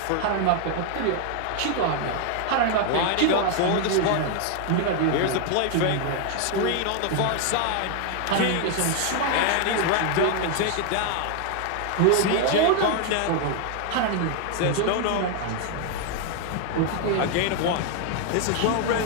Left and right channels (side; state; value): both; different; correlation 0.00